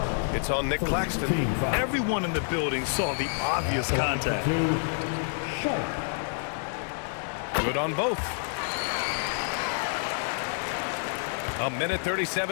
It's on Nick Claxton. Everyone in the building saw the obvious contact. Sharp. Good on both. A minute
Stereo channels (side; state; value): right; silent; digital silence